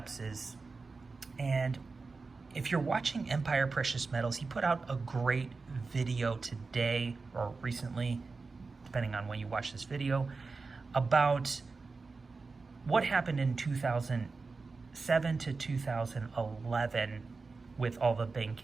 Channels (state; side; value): quieter; left; 4.1 dB